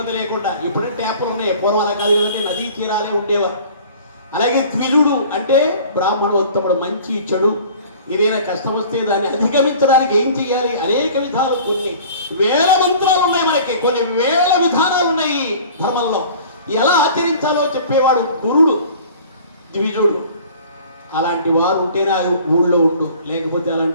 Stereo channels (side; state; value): both; inverted; correlation -0.46